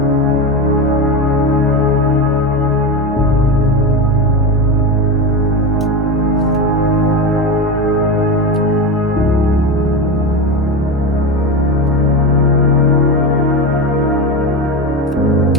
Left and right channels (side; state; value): both; normal; correlation 0.20